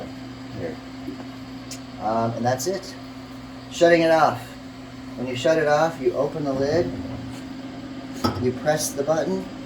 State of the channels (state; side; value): identical; both; correlation 1.00